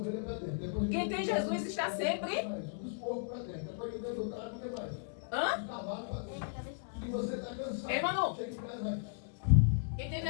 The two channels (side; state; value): right; silent; digital silence